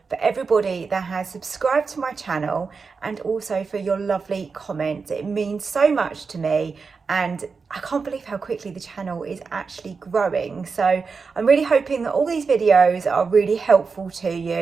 for everybody that has subscribed to my channel and also for your lovely comments. It means so much to me, and I can't believe how quickly the channel is actually growing. So I'm really hoping that all these videos are really helpful to you,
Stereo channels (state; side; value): quieter; left; 4.9 dB